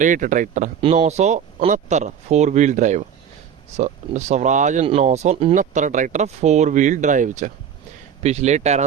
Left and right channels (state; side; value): quieter; left; 8.2 dB